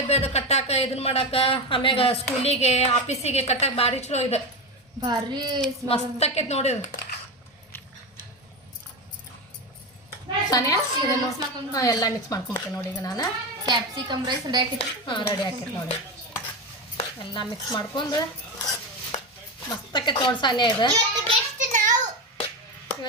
ಅದು ಕಟ್ಟಾಕ, ಇದನ್ನ ಮಾಡಾಕ, ಆಮ್ಯಾಗ ಸ್ಕೂಲಿಗೆ ಆಫೀಸಿಗೆ ಕಟ್ಟಾಕ ಭಾರಿ ಚಲೋ ಇದು. ಭಾರಿ ಮಸ್ತ್ ಆಕೈತಿ ನೋಡಿ. ಸಾನಿಯಾ ಇದನ್ನು ಎಲ್ಲ ಮಿಕ್ಸ್ ಮಾಡ್ಕೊಂಬಿಟ್ಟೆ ನೋಡಿ. ಈಗ ನಾನು ಕ್ಯಾಪ್ಸಿಕಮ್ ರೈಸ್ ರೆಡಿ ಆಕೈತಿ. ರೆಡಿ ಆಕೈತಿ ನೋಡಿ. ಎಲ್ಲ ಮಿಕ್ಸ್ ಮಾಡ್ಕೊಂಡು ಮಸ್ತ್ ಆಕೈತಿ ನೋಡಿ. ಸಾನಿಯಾ ಇದು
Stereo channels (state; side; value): normal; both; correlation 0.18